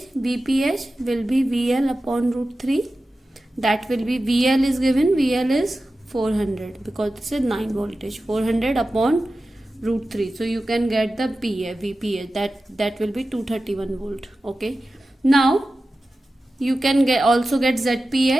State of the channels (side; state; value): both; normal; correlation 0.94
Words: VPH will be VL upon root 3. That will be VL is given, VL is 400 because this is 9 voltage, 400 upon root 3. So you can get the VPH, that will be 231 volt. Okay, now you can also get